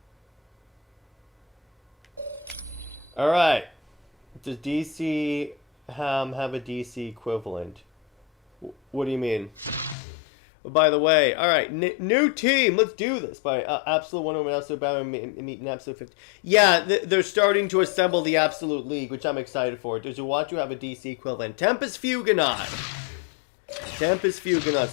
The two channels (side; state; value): right; drops out; at 10.0 s